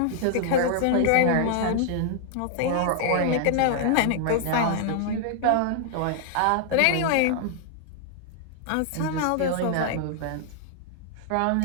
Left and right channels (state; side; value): different; both; correlation -0.01